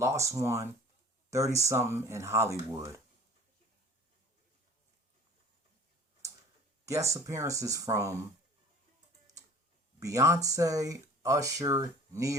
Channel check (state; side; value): normal; both; correlation 0.45